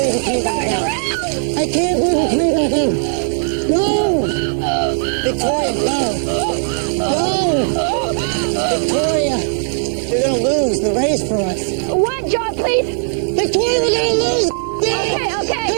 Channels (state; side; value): silent; left; 68 dB below the other